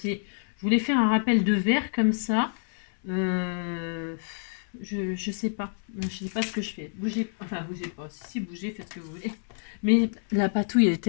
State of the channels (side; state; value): right; silent; 60 dB below the other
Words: Je voulais faire un rappel de verre comme ça. Je sais pas. Je sais pas ce que je fais. Bougez pas. Si, bougez, faites ce que vous voulez. Mais la patouille, elle est